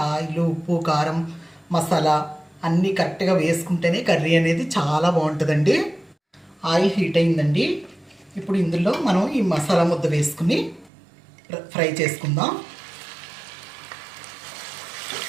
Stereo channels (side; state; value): left; drops out; at 10.9 s